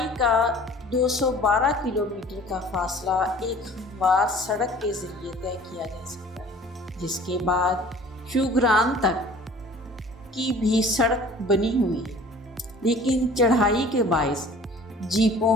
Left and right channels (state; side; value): normal; both; correlation 0.48